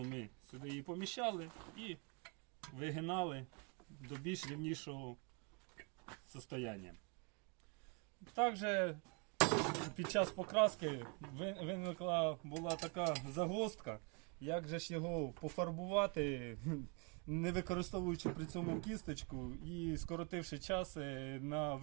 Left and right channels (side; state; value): left; quieter; 34.6 dB